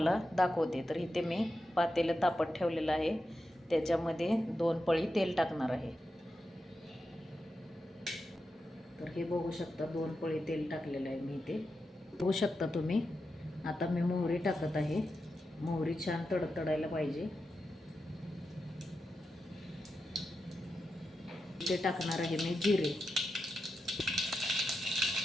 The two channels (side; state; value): both; normal; correlation 0.89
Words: दाखवते। तर इथे मी पातेलं तापत ठेवलेलं आहे, त्याच्यामध्ये 2 पळी तेल टाकणार आहे। तर हे बघू शकता 2 पळी तेल टाकलेलं आहे मी इथे, बघू शकता तुम्ही। आता मी मोहरी टाकत आहे, मोहरी छान तडतडायला पाहिजे। इथे टाकणार आहे मी जिरे,